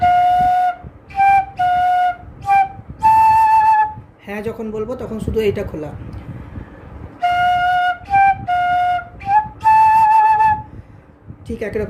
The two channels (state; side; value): identical; both; correlation 1.00